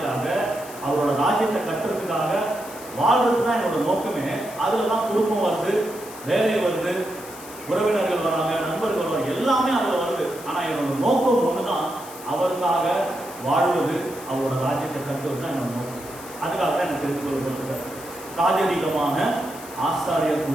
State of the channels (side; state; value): left; noise; hiss, 16 dB below the sound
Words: அவரோட ராஜ்யத்தை கட்டுறதுக்காக வாழ்றது தான் என்னோட நோக்கமே. அதுலதான் குடும்பம் வருது, வேலை வருது, உறவினர்கள் வராங்க, நண்பர்கள் வராங்க, எல்லாமே அதுல வருது. ஆனா என்னோட நோக்கம் ஒண்ணுதான், அவருக்காக வாழ்வது, அவரோட ராஜ்யத்தை கட்டுவது தான் என்னோட நோக்கம். அதுக்காக தான் எனக்கு தெரிந்து கொள்ளப்பட்டிருக்காரு. ராஜரீகமான ஆசாரியர்